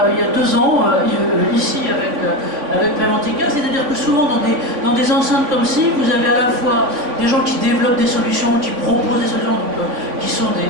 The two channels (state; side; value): late; left; 3.5 ms